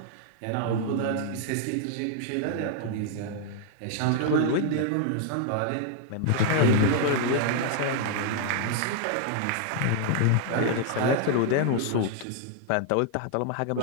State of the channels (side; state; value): both; different; correlation -0.01